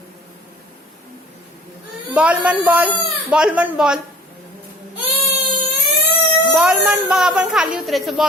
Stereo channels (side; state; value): both; normal; correlation 0.48